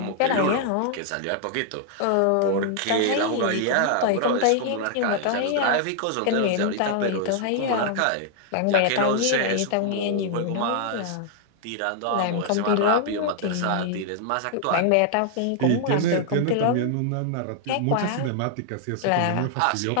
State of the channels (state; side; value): different; both; correlation 0.00